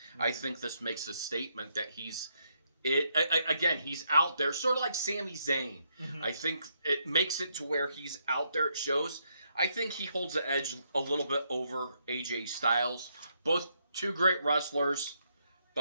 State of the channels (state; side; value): inverted; both; correlation -0.76